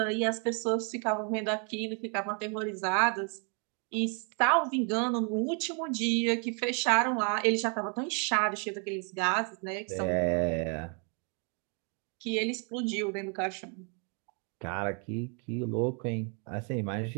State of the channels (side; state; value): left; quieter; 38.5 dB